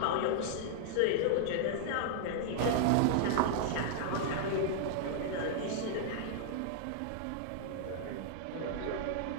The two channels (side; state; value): both; different; correlation -0.01